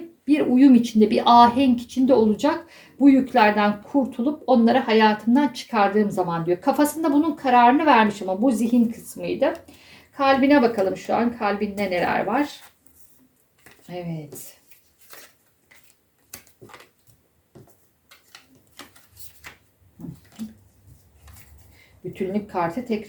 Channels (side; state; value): both; identical; correlation 1.00